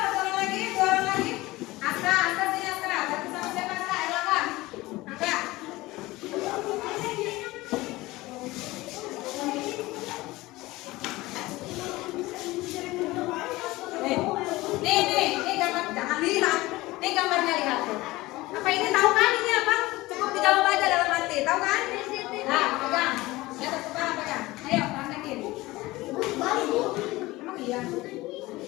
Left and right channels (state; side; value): quieter; right; 19.6 dB